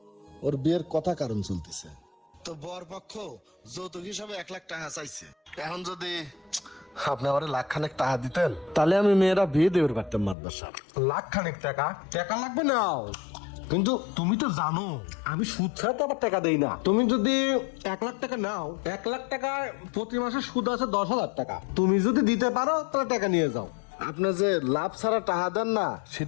ওর বিয়ের কথা কারণ চলতেছে, তো বর পক্ষ যৌতুক হিসাবে 1 লাখ টাকা চাইছে। এখন যদি আপনি আমার লাখখানেক টাকা দিতেন তাহলে আমি মেয়েরা বিয়ে দেবে পারতাম মাদবার সাহেব। লাখ খানেক টাকা? টাকা লাগবে নাও, কিন্তু তুমি তো জানো আমি সুদ ছাড়া তো আবার টাকা দেই না। তুমি যদি 1 লাখ টাকা নাও, 1 লাখ টাকা প্রতি মাসে সুদ আছে 10,000 টাকা। তুমি যদি দিতে পারো তাহলে টাকা নিয়ে যাও। আপনি যে লাভ ছাড়া টাকা দেন না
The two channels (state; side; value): drops out; right; at 10.4 s